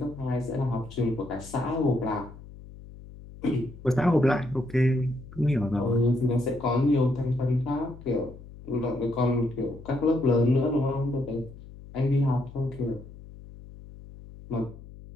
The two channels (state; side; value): noise; left; hum, 17 dB below the sound